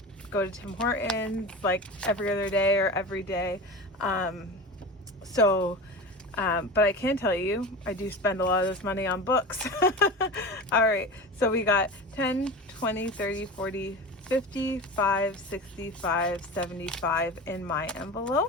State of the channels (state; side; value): normal; both; correlation 0.30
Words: go to Tim Hortons like every other day or every day. But I can tell you, I do spend a lot of this money on books. All right, so we got 10, 20, 30, 40, 55, 65, 75 in my